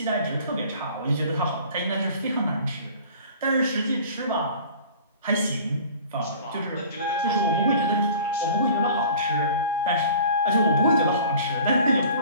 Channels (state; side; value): inverted; both; correlation -0.44